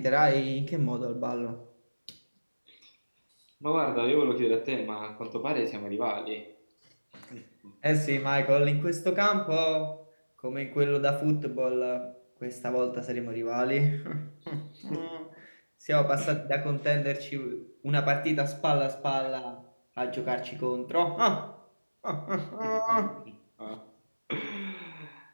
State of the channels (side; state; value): both; inverted; correlation -1.00